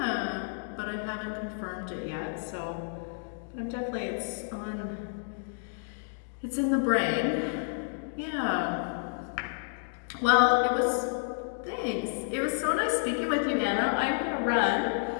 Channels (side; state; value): right; silent; digital silence